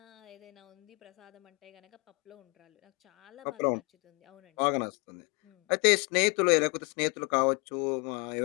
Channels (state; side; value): quieter; right; 30.8 dB